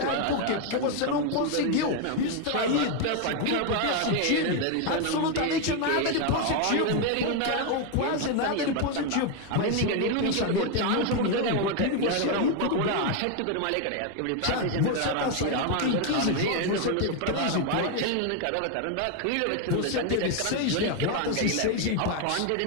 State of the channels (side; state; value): both; different; correlation 0.01